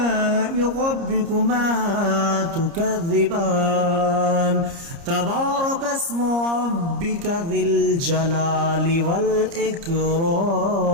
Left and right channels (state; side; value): late; left; 30 ms